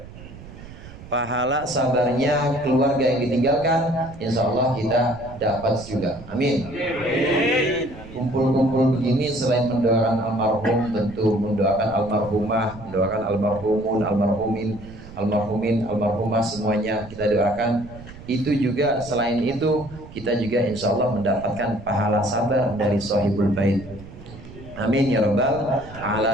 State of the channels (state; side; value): noise; right; rumble, 16 dB below the sound